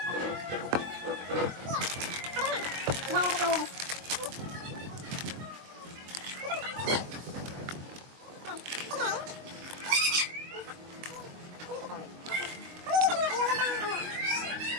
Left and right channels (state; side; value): late; left; 22 ms